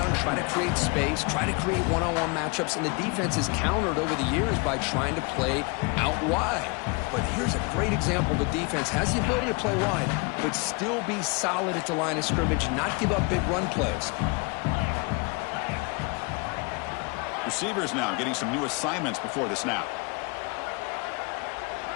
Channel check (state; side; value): quieter; right; 29.9 dB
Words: try to create space, try to create one-on-one matchups, and the defense is countered over the years by trying to play out wide. But here's a great example. The defense has the ability to play wide, but still be solid at the line of scrimmage, not give up big run plays. Receivers now getting some new assignments before the snap.